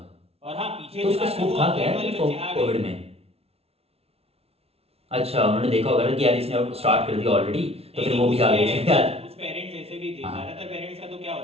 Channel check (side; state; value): left; late; 0.30 ms